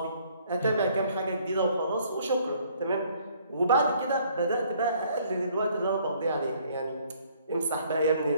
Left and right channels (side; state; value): both; inverted; correlation -0.62